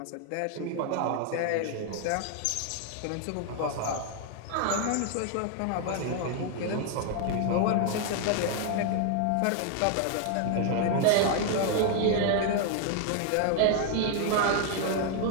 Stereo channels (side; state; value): both; different; correlation 0.00